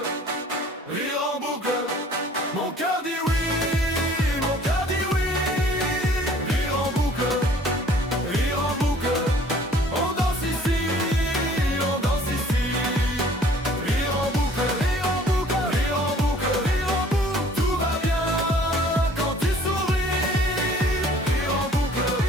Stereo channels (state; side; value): normal; both; correlation 0.54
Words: mon cœur dit oui.